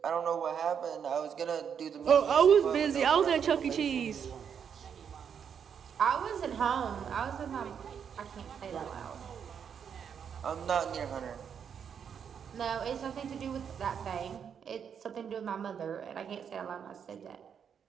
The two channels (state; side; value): quieter; left; 7.6 dB